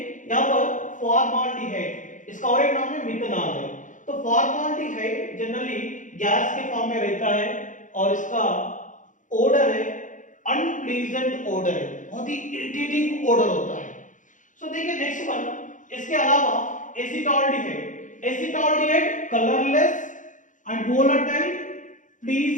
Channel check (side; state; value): right; late; 0.37 ms